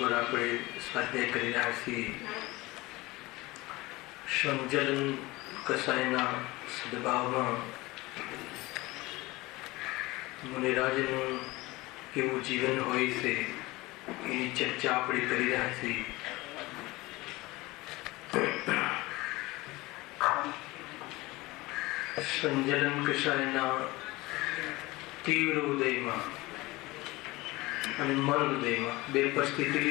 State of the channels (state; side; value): quieter; right; 21.0 dB